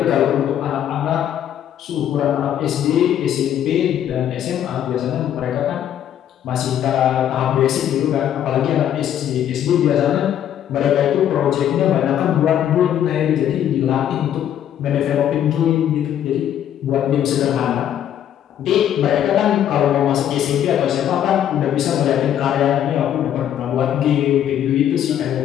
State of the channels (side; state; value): right; quieter; 10.4 dB